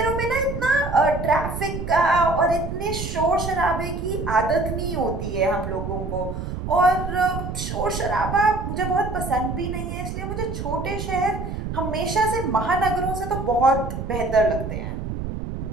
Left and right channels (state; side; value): noise; right; rumble, 5 dB below the sound